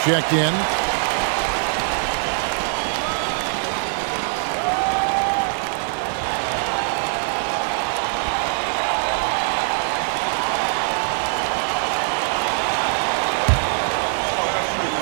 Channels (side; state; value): left; silent; 62 dB below the other